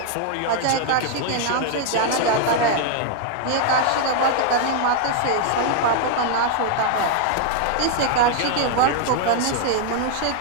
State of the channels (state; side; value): different; both; correlation 0.00